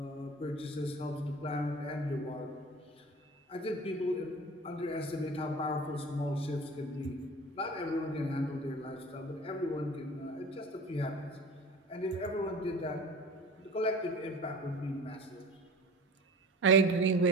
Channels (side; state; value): both; normal; correlation 0.39